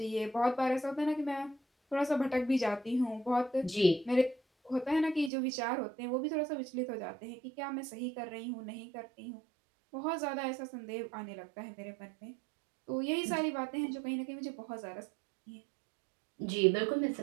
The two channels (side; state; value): left; drops out; at 5.3 s